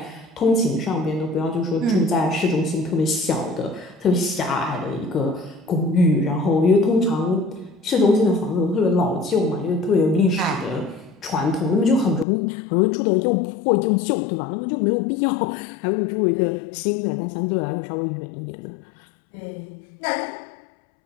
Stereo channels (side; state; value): right; drops out; at 12.2 s